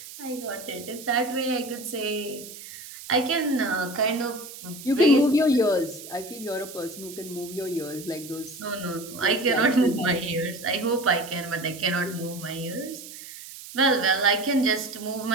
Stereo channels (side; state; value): right; noise; hiss, 14 dB below the sound